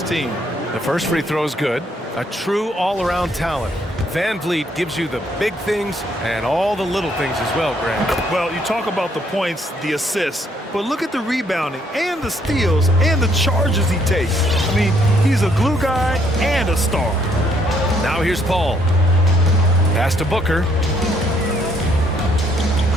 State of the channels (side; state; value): both; normal; correlation 0.69